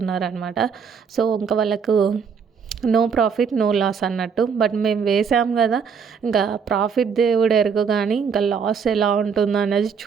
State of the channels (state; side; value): quieter; left; 6.4 dB